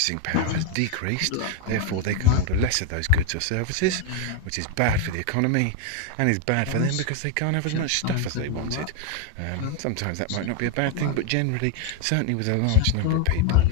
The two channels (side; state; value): both; different; correlation 0.01